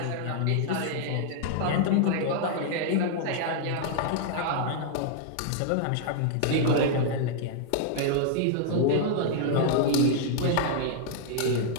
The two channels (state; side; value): different; both; correlation -0.01